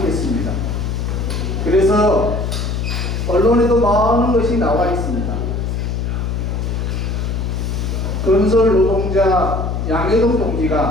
그래서 언론에도 많은 것이 나와 있습니다. 건설 노동자 양해동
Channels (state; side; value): noise; left; hum, 1 dB below the sound